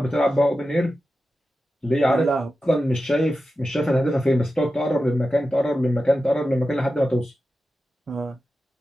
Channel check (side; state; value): both; normal; correlation 0.92